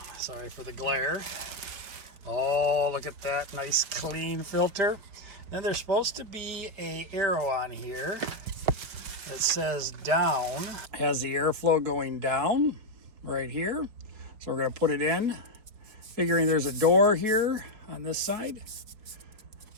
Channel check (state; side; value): late; left; 4.7 ms